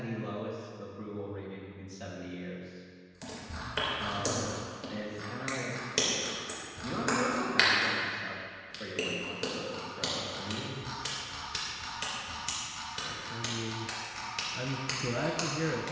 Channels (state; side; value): identical; both; correlation 1.00